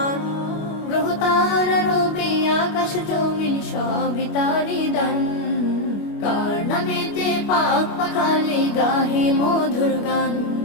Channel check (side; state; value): right; late; 25 ms